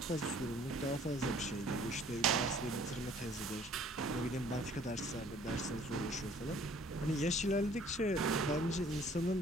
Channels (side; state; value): both; normal; correlation 0.55